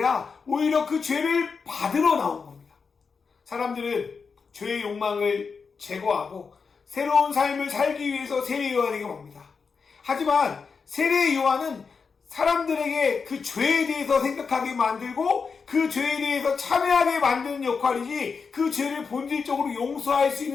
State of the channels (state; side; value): quieter; right; 5.3 dB